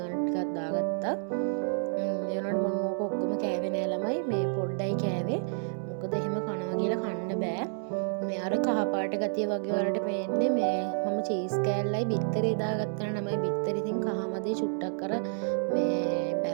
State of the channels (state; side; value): silent; left; digital silence